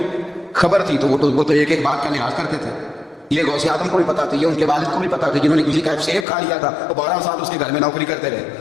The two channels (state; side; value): drops out; right; at 6.2 s